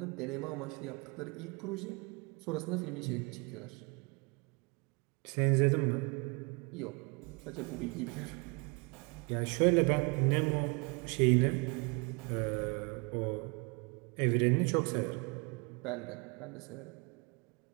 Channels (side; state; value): left; quieter; 30.9 dB